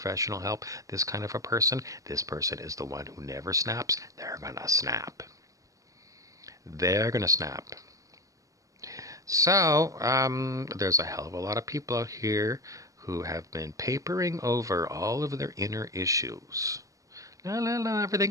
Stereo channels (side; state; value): left; late; 0.16 ms